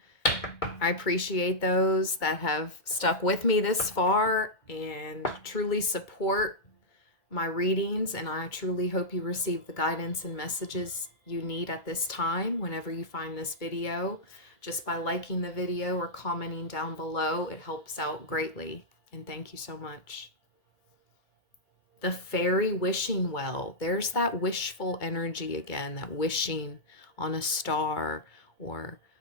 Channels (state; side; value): late; right; 2.2 ms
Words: I appreciate those that have stuck with me this far and truly support my readings, and I truly hope you receive the guidance and messages you need at this time whenever you find this video. Just by liking the video or commenting down below, it helps out greatly, and thank you so much. The fairy wishing well. There's that wishful energy again, that wishing on a star or